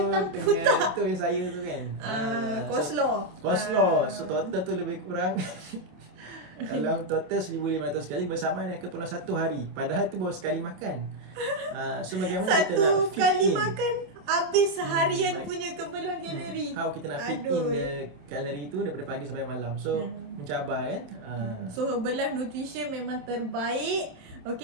putah. Itu yang saya tu kan. Coleslaw. So total tu lebih kurang dalam total 1,500 kali bersamaan dengan keperluan 1 hari. Padahal itu baru sekali makan. So bagaimana kita nak fit kali in? makan habis seharian punya keperluan kalori. How kita nak fit in the kalori tu daripada pagi sampai malam. So mencabar kan. So Herbalife Nutrition memang terbaik.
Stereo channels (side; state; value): left; late; 27 ms